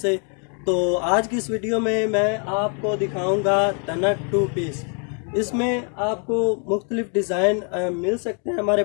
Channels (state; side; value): quieter; right; 39.9 dB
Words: तो आज की इस वीडियो में मैं आपको दिखाऊंगा तनक टू पीस। इसमें आपको मुख्तलिफ डिज़ाइन मिल सकते हैं हमारे